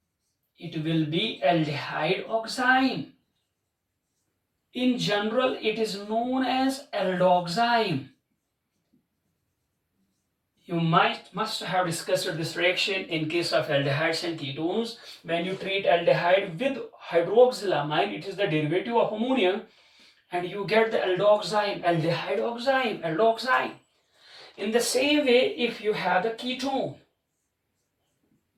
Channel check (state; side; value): identical; both; correlation 1.00